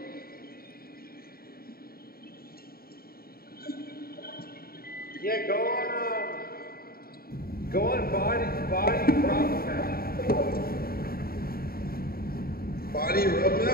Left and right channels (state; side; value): late; right; 0.43 ms